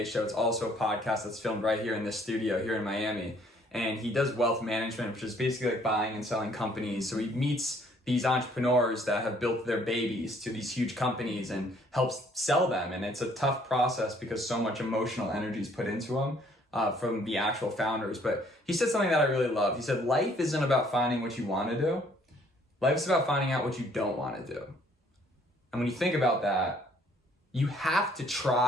show. It's also a podcast that's filmed right here in this studio here in Miami. And he does wealth management, which is basically like buying and selling companies. So he meets these entrepreneurs that have built their babies to these huge companies and helps sell them. And it's a tough process because so much emotional energy is put into them from the actual founders. But he said something that I really loved. He said, life isn't about finding what you want to do. Life's about finding out what you don't want to do. And when you think about that, you have to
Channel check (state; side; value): normal; both; correlation 0.62